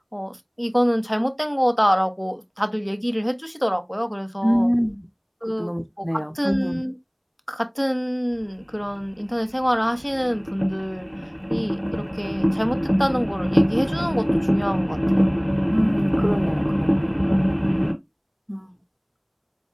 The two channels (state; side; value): identical; both; correlation 1.00